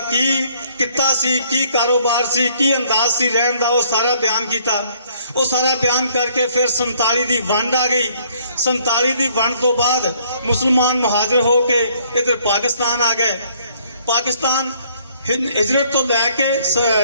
ਕਿੱਤਾ ਸੀ, ਕੀ ਕਾਰੋਬਾਰ ਸੀ, ਕੀ ਅੰਦਾਜ਼ ਸੀ ਰਹਿਣ ਦਾ, ਉਹ ਸਾਰਾ ਬਿਆਨ ਕੀਤਾ। ਉਹ ਸਾਰਾ ਬਿਆਨ ਕਰਕੇ ਫਿਰ 47 ਦੀ ਵੰਡ ਆ ਗਈ। 47 ਦੀ ਵੰਡ ਤੋਂ ਬਾਅਦ ਮੁਸਲਮਾਨ ਮੁਹਾਜਰ ਹੋ ਕੇ ਇੱਧਰ ਪਾਕਿਸਤਾਨ ਆ ਗਏ। ਪਾਕਿਸਤਾਨ ਹਿਜਰਤ ਤੋਂ ਲੈ ਕੇ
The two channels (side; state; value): both; inverted; correlation -0.63